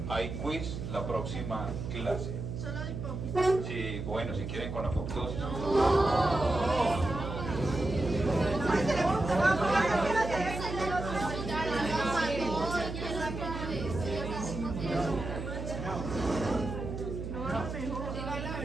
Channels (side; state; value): right; noise; hum, 6 dB below the sound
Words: hay quiz la próxima clase. ¿Solo de hipófisis? Sí, bueno, si quieren con apoptosis.